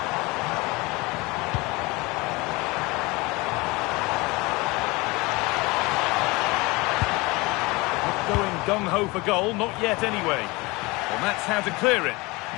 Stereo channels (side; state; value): right; quieter; 23.8 dB